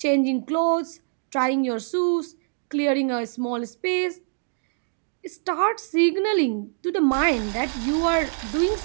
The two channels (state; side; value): silent; left; digital silence